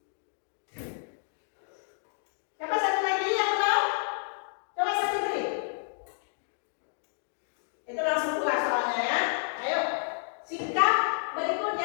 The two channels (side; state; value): right; silent; digital silence